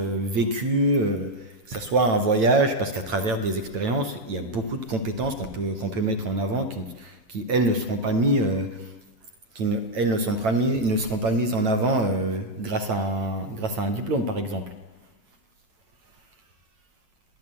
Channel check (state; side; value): late; left; 9.0 ms